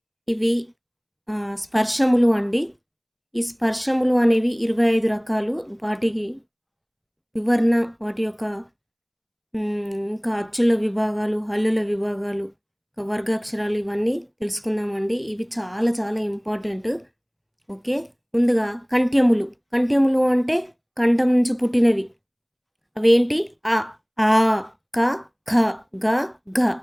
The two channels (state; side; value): identical; both; correlation 1.00